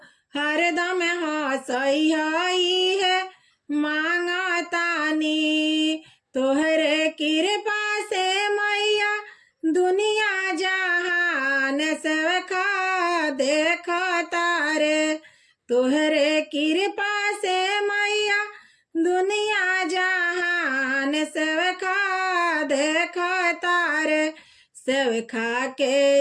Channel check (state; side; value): identical; both; correlation 1.00